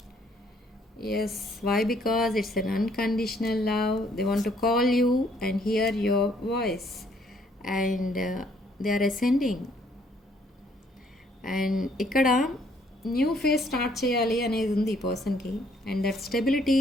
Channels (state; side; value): normal; both; correlation 0.65